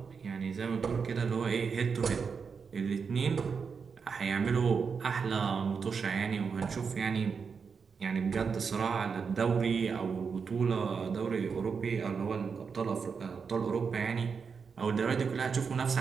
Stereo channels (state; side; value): quieter; left; 5.7 dB